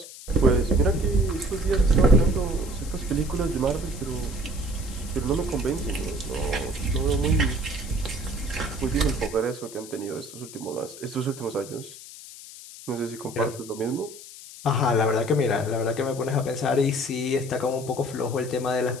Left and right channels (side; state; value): left; noise; hiss, 15 dB below the sound